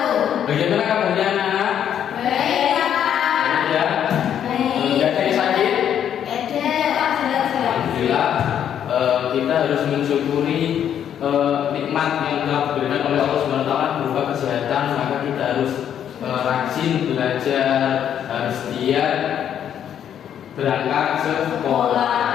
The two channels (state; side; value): quieter; right; 9.5 dB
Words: Bagaimana kabarnya anak-anak? Baik, Pak. Ya. Baik. Tidak ada yang sakit? Ada. Alhamdulillah. Kita harus mensyukuri nikmat yang telah diberikan oleh Allah Subhanahu wa taala berupa kesehatan, maka kita harus rajin belajar, harus giat berangkat sekolah.